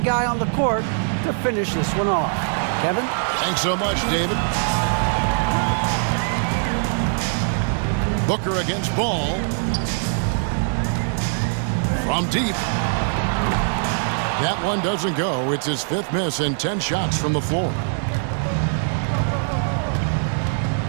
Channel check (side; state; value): left; silent; digital silence